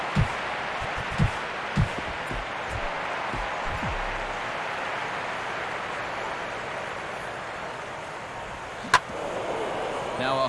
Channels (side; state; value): both; identical; correlation 1.00